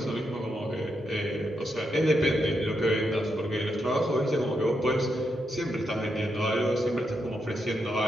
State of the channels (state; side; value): normal; both; correlation 0.82